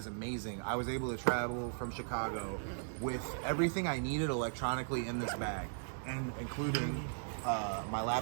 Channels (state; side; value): silent; left; digital silence